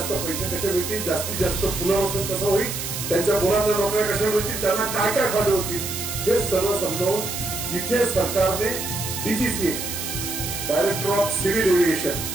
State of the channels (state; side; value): noise; right; hiss, 5 dB below the sound